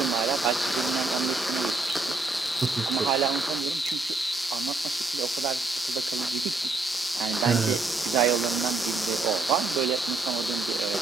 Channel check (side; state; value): left; quieter; 3.4 dB